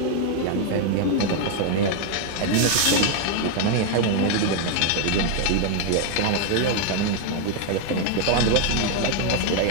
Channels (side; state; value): both; different; correlation 0.01